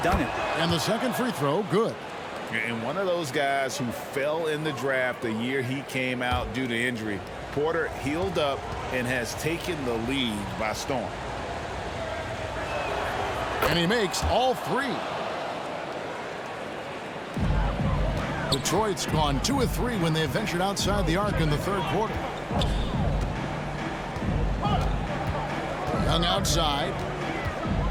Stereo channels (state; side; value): identical; both; correlation 1.00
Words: done it. And the second free throw, good. And one of those guys who fell in the draft the year he came out due to injury, Porter healed up and has taken the lead by storm. And he makes all 3. Detroit's gone 2 of 3 when they ventured outside the arc in the third quarter. Young outside.